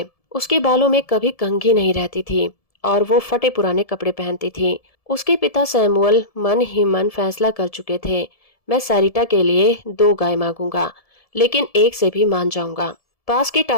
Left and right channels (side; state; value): right; late; 1.7 ms